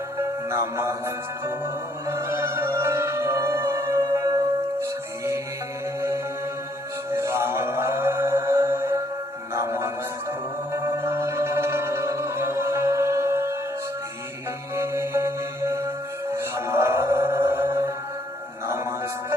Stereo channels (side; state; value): both; normal; correlation 0.68